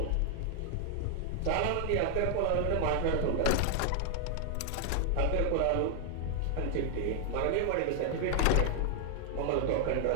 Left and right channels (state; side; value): different; both; correlation 0.00